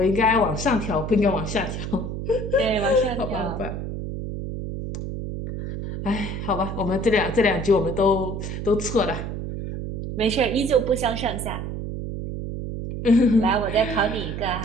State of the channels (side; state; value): right; noise; hum, 5 dB below the sound